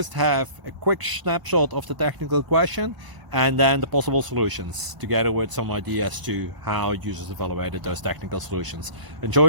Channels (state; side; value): late; left; 1.0 ms